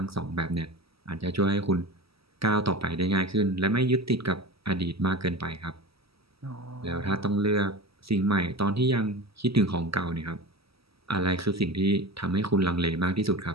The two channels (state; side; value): late; left; 0.76 ms